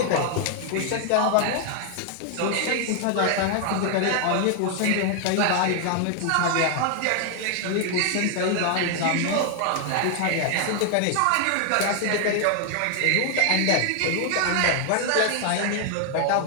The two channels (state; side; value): different; both; correlation 0.00